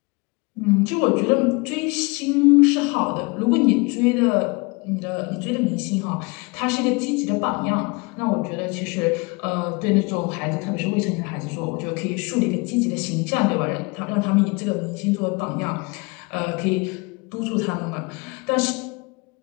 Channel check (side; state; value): right; quieter; 27.8 dB